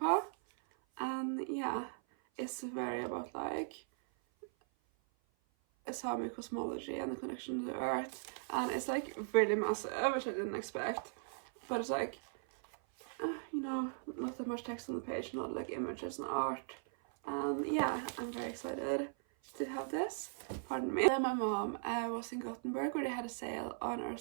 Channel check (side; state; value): left; silent; 52 dB below the other